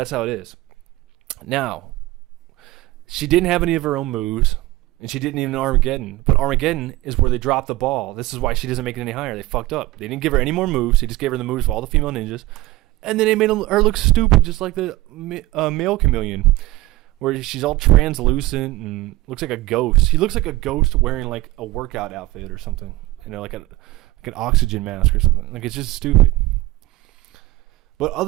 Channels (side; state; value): left; quieter; 18.1 dB